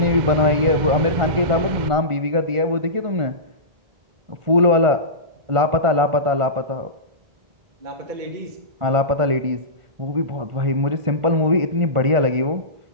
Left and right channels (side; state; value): left; late; 1.4 ms